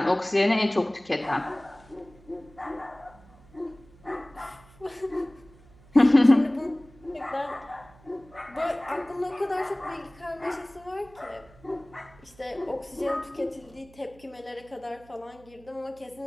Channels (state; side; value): noise; right; hum, 25 dB below the sound